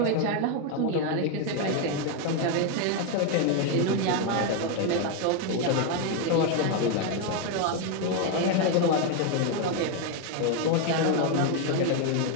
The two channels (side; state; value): both; different; correlation 0.01